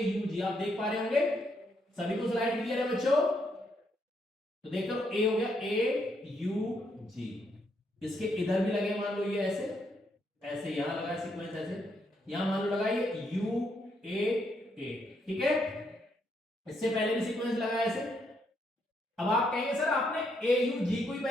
आप देख पा रहे होंगे। सभी को स्लाइड क्लियर है बच्चों? तो देख लो, A हो गया AUG। इसके इधर भी लगे, मान लो ये ऐसे, ऐसे यहां लगा सीक्वेंस ऐसे, यहां मान लो लगाइए UAA, ठीक है। इससे पहले भी सीक्वेंस लगाया ऐसे। अब आप कहेंगे सर आपने AUG को ही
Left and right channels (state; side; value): normal; both; correlation 0.76